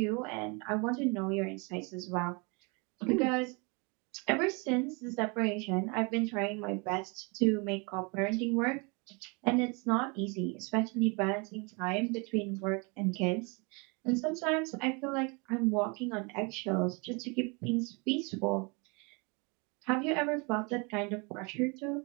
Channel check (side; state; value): left; quieter; 31.0 dB